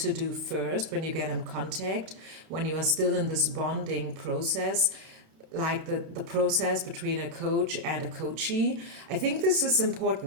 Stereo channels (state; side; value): late; left; 32 ms